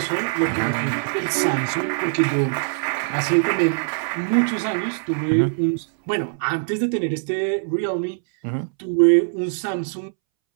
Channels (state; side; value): silent; left; 64 dB below the other